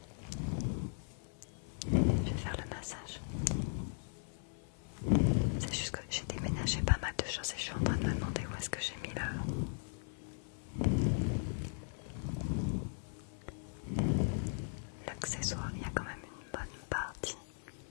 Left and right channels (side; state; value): right; silent; 52 dB below the other